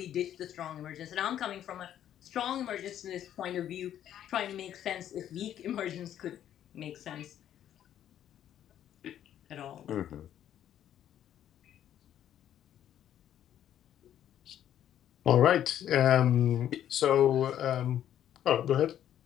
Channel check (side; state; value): right; quieter; 10.8 dB